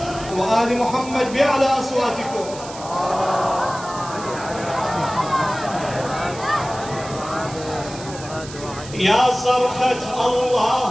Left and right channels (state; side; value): noise; right; hiss, 14 dB below the sound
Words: وآل محمد بأعلى أصواتكم. يا صرخة